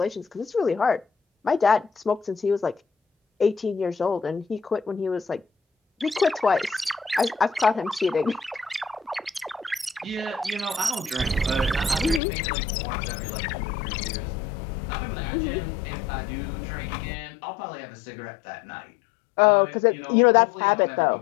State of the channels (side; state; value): right; drops out; at 12.2 s